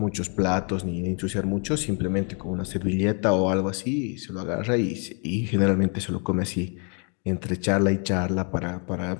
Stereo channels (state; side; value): quieter; right; 37.5 dB